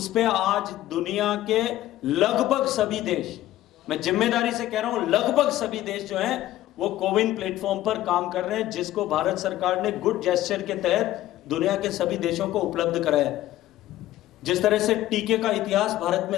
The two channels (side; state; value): right; quieter; 14.5 dB